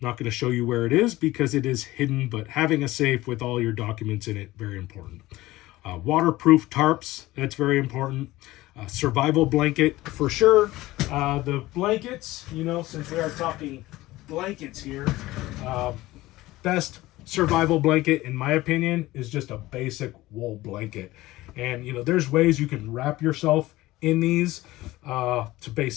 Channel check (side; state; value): right; quieter; 17.9 dB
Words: not going to show you where it is because it is hidden, but having a safe with all your documents in it, very important. Waterproof tarps, that's very important. Survival blanket for sure. The blankets, since we are talking blankets here, best survival blanket, in my opinion, is just a basic wool blanket. And, there's ways you can wrap yourself in these to